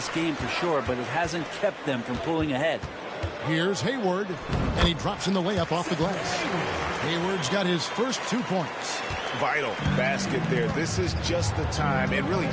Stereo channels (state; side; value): identical; both; correlation 1.00